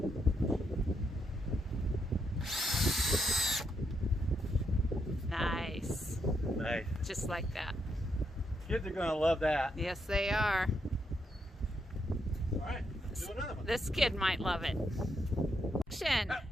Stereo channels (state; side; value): normal; both; correlation 0.79